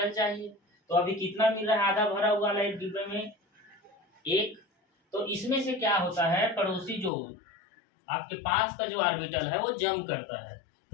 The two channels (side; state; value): right; drops out; at 7.1 s